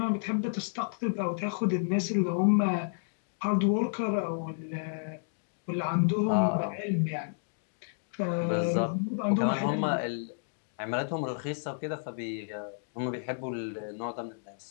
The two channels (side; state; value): right; silent; digital silence